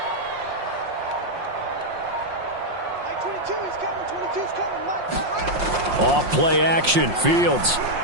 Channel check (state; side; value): late; left; 5.6 ms